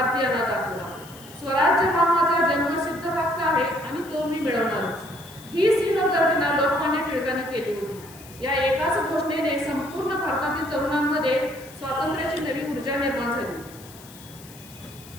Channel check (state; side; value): noise; left; hiss, 20 dB below the sound